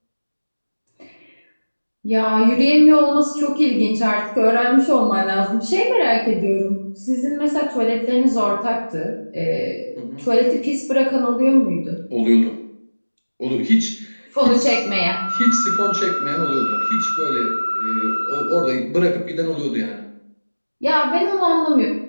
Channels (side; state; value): both; inverted; correlation -1.00